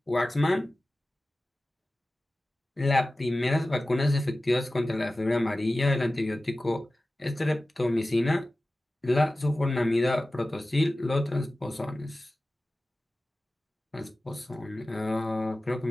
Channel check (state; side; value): normal; both; correlation 0.96